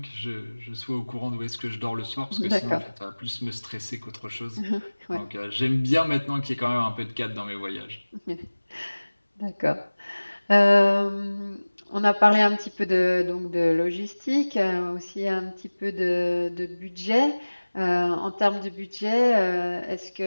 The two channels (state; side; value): inverted; both; correlation -1.00